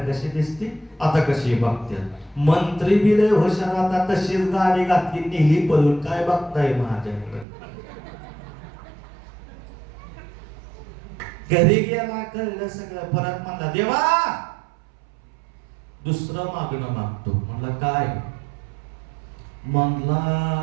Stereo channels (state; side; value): drops out; left; at 7.5 s